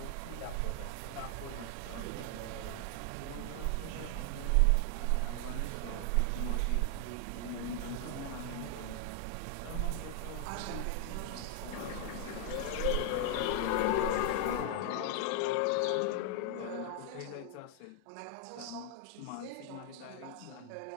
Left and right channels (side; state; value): both; different; correlation 0.00